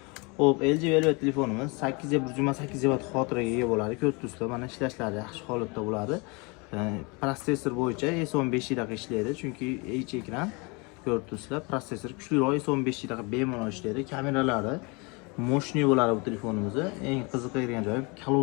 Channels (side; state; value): right; quieter; 29.2 dB